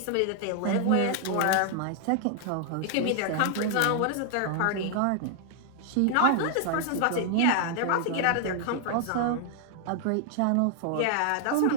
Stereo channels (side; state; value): both; different; correlation 0.00